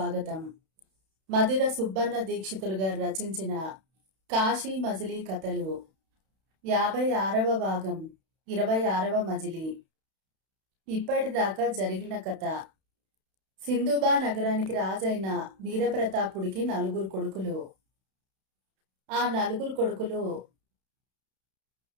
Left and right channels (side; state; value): left; late; 31 ms